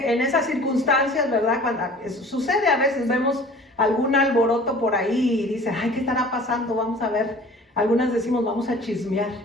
en esas circunstancias, ¿verdad? Cuando sucede a veces, vemos algún alboroto por ahí y dice: ay, ¿qué estará pasando? Vamos a ver. Algunas decimos: vamos a chismear,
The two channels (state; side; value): normal; both; correlation 0.46